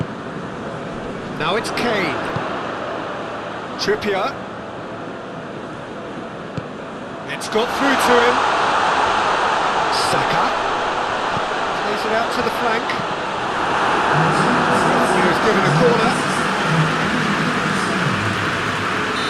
Now it's Kane. Trippier. It's got through to him. Saka. Plays it out to the flank. He's given a corner.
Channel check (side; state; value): both; identical; correlation 1.00